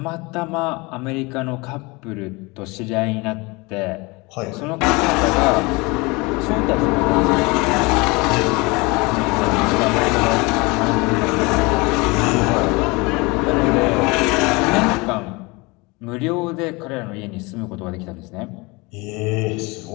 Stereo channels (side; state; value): right; quieter; 25.6 dB